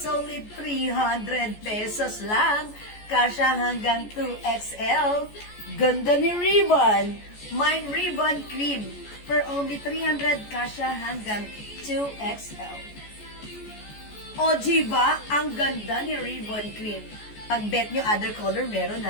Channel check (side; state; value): right; late; 14 ms